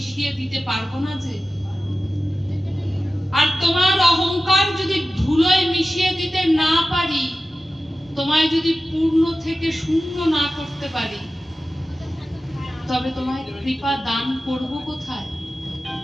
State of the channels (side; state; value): both; normal; correlation 0.94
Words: দিতে পারবো না যে। আর তোমার অহংকার যদি ধুলোয় মিশিয়ে দিতে না পারি, তোমায় যদি পূর্ণ থেকে শূন্য না করতে পারি, তবে তোমায় কৃপা দান করব কোথায়?